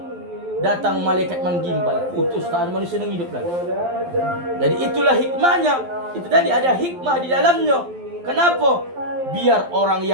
datang malaikat menggimbal, putus, tak ada manusia yang hidup lagi. Jadi itulah hikmahnya. Itu tadi ada hikmah di dalamnya. Kenapa? Biar orang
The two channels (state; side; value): late; left; 12 ms